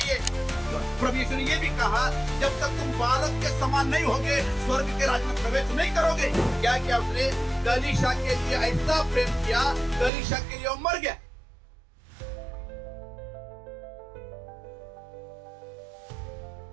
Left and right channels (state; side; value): drops out; left; at 10.1 s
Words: प्रभु यीशु ने ये भी कहा जब तक तुम बालक के समान नहीं होगे स्वर्ग के राज्य में प्रवेश नहीं करोगे। क्या किया उसने? कलीसिया के लिए ऐसा प्रेम किया, कलीसिया के लिए वो मर गया।